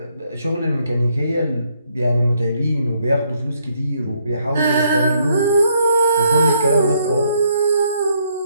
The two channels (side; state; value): both; inverted; correlation -0.72